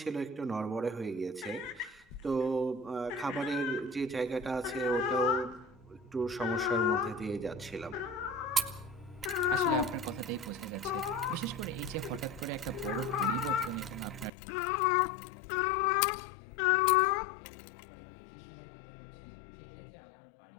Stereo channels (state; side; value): drops out; right; at 14.3 s